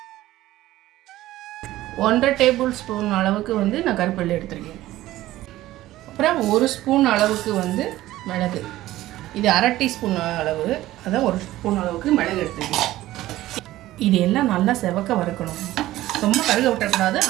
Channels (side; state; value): left; quieter; 15.7 dB